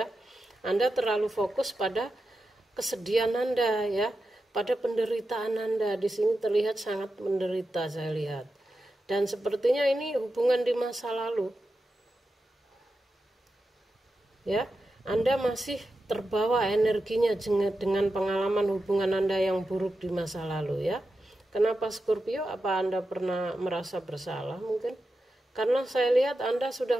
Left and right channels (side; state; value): both; normal; correlation 0.90